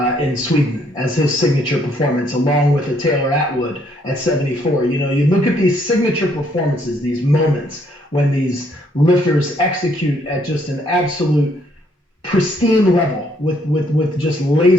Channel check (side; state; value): both; normal; correlation 0.68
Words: in Sweden as his signature performance, along with a Taylor Atwood at 74. You look at these signature performances, these moments when these lifters execute at just an absolute pristine level with just